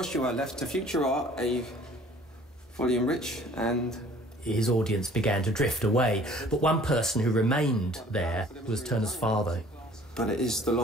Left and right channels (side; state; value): both; normal; correlation 0.52